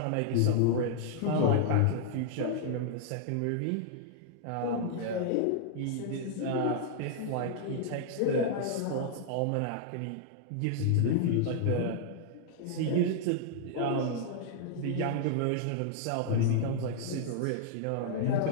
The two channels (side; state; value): both; different; correlation -0.01